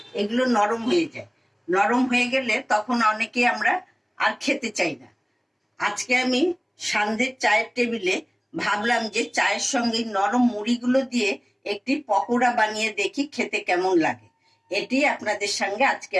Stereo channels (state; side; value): identical; both; correlation 1.00